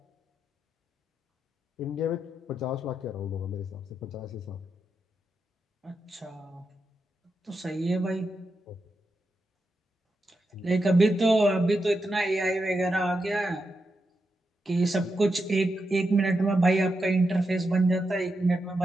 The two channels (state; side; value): normal; both; correlation 0.86